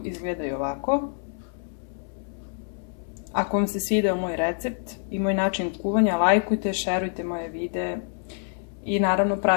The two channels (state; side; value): silent; right; 61 dB below the other